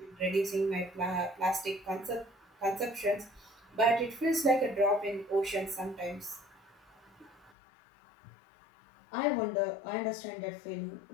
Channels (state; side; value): drops out; right; at 7.5 s